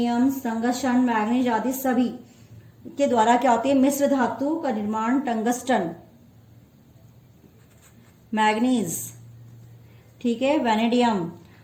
टंगस्टन, मैग्नीज आदि सभी के द्वारा क्या होती है मिश्र धातु का निर्माण। टंगस्टन, मैग्नीज, ठीक है, वैनेडियम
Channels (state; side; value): identical; both; correlation 1.00